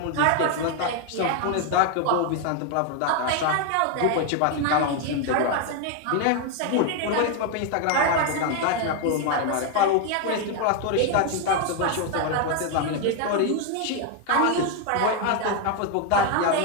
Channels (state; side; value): different; both; correlation 0.01